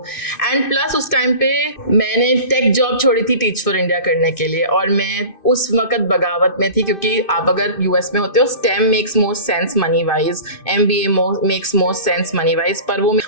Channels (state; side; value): late; right; 2.6 ms